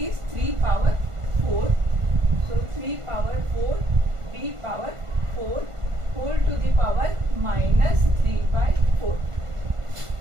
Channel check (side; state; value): left; late; 1.5 ms